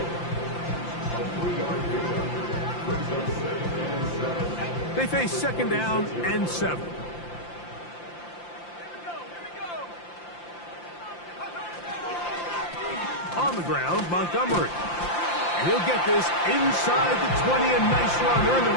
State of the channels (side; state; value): right; late; 5.8 ms